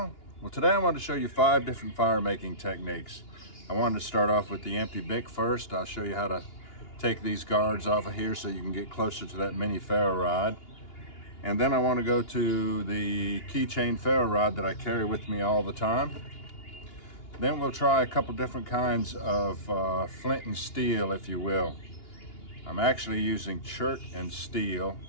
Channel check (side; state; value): right; late; 2.8 ms